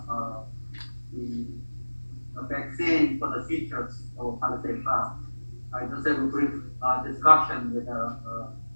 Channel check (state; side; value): inverted; both; correlation -1.00